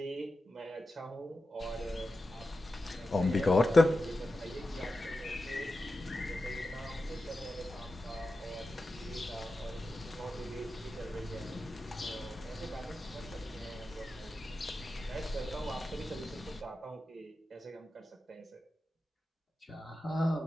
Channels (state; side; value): normal; both; correlation 0.92